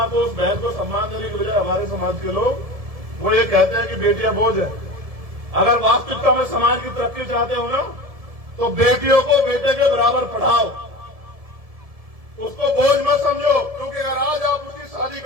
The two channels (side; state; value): left; late; 1.7 ms